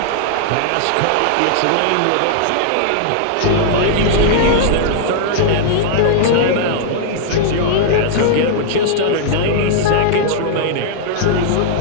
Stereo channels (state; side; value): different; both; correlation -0.01